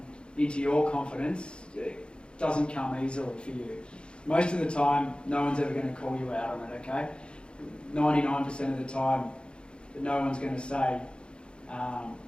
into your confidence, it doesn't come easily for you. Most of the time, no one's ever going to call you out on it, okay? 99% of the time, no one's going to say,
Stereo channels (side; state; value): right; late; 0.054 ms